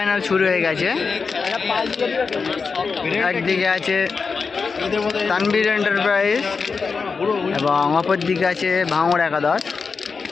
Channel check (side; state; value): right; quieter; 5.0 dB